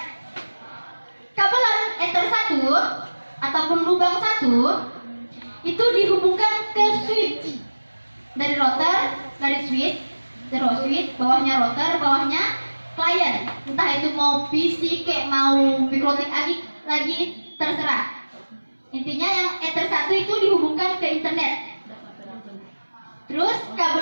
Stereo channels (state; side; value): inverted; both; correlation -1.00